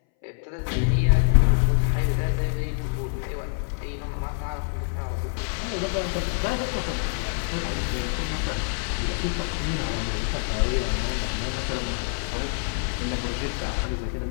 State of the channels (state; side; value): silent; right; 61 dB below the other